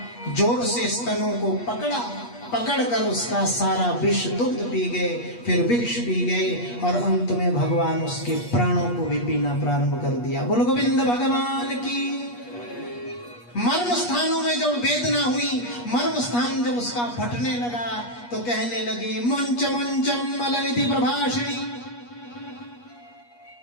जोर से स्तनों को पकड़ा, पकड़कर उसका सारा विष दुग्ध पी गए, फिर विष पी गए और अंत में भगवान उसके प्राणों को भी पीना प्रारंभ कर दिया। बोलो गोविंद भगवान की। मर्म स्थानों में जब वेदना हुई, मर्म स्थान जब उसका फटने लगा तो कहने लगी मुंच मुंचम अलमिति प्रभाषिणी।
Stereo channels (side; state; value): right; late; 8.3 ms